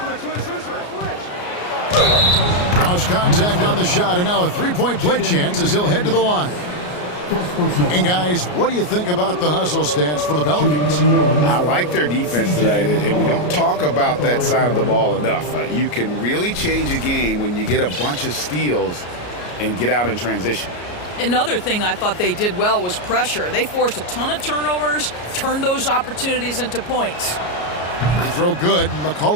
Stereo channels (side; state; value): right; late; 33 ms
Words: Cross contact on the shot, and now a three-point play chance as he'll head to the line. And guys, what do you think about the hustle stance for the Pelicans? I like their defense tonight, and we don't talk about that side of the ball enough. You can really change a game when you get a bunch of steals and get out in transition. Another thing I thought they did well was pressure. They forced a ton of turnovers, turned those opportunities into points. Free throw good,